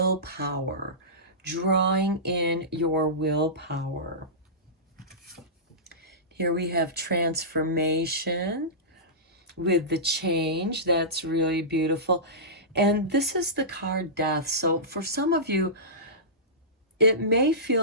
drawing in your willpower. Here we have transformation with the change. That's really beautiful. And this is the card death. So for some of you, it may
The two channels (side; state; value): both; normal; correlation -0.19